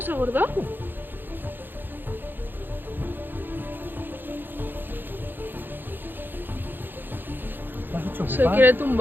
gorda? Se quiere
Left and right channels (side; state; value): left; late; 0.094 ms